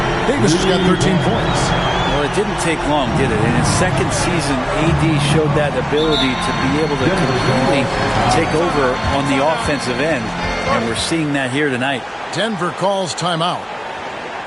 Davis has got 13 points. Well, it didn't take long, did it? In his second season, AD showed that ability to be able to completely take over on the offensive end, and we're seeing that here tonight. Denver calls timeout.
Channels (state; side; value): identical; both; correlation 1.00